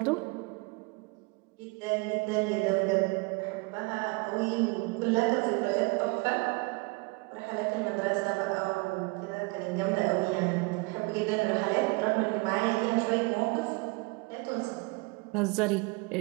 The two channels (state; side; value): quieter; left; 27.4 dB